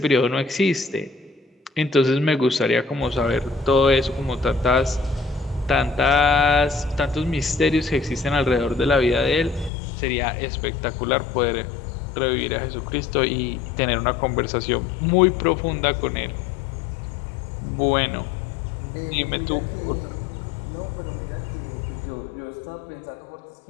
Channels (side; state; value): right; drops out; at 9.7 s